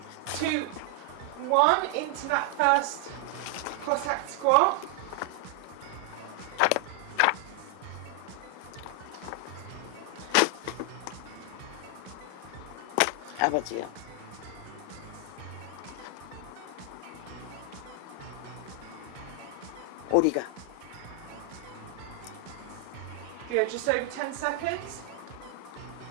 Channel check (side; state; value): both; different; correlation 0.00